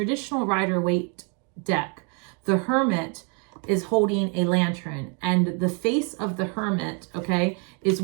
Rider-Waite deck, the Hermit is holding a lantern, and the face of the Hermit, okay, is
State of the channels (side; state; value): left; quieter; 36.9 dB